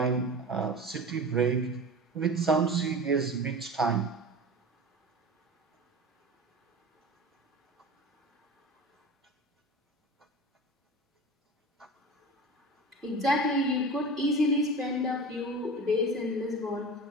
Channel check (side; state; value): both; normal; correlation 0.33